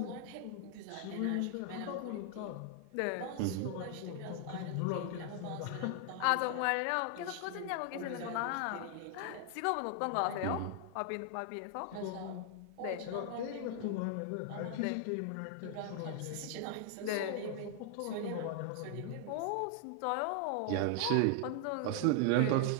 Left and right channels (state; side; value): different; both; correlation 0.00